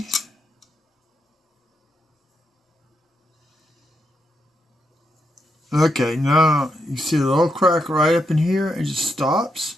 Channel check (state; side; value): normal; both; correlation 0.81